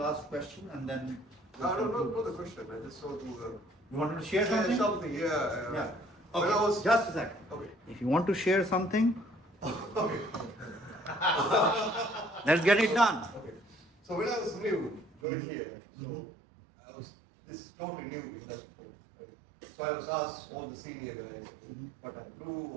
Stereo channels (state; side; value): drops out; left; at 15.2 s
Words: question and then. No, not the question. I just want to. You wanted to share something? Something, yeah. Yeah. When Okay. I was- Just a second. Okay. If you want to share something, Okay. let's get it done. Okay. So when I was new, joined here, this is totally new industry, right? So I was asked all the senior guys what I do,